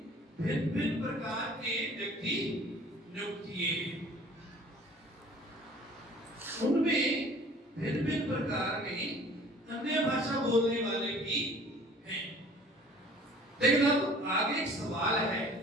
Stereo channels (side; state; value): both; normal; correlation 0.50